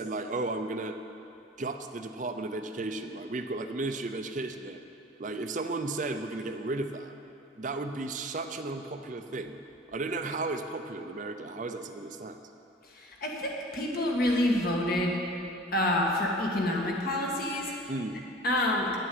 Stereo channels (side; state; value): both; normal; correlation 0.41